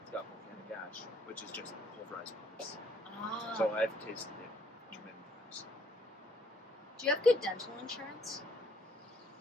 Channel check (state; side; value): normal; both; correlation 0.66